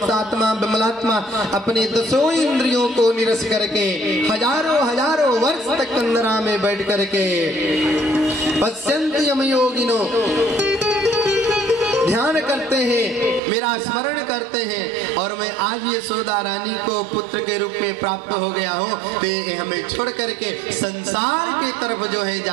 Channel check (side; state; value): left; drops out; at 13.4 s